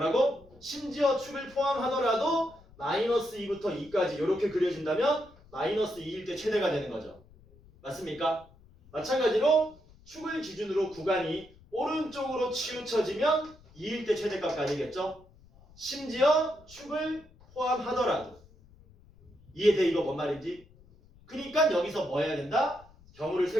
심지어 축을 포함하더라도 마이너스 2부터 2까지 이렇게 그려진다면 마이너스 2일 때 최대가 되는 거죠. 맞습니까? 마찬가지로 축을 기준으로 구간이 오른쪽으로 치우쳐지면 2일 때 최대값까지겠죠? 심지어 축을 포함하더라도. 이해돼? 이거 뭔 말인지? 그러니까 여기서 뭐 해야 된다? 경우를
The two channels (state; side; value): noise; left; rumble, 26 dB below the sound